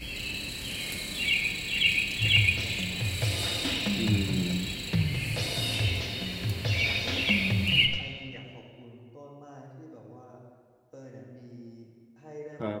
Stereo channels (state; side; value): identical; both; correlation 1.00